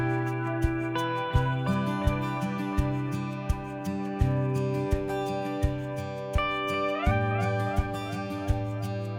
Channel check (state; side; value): identical; both; correlation 1.00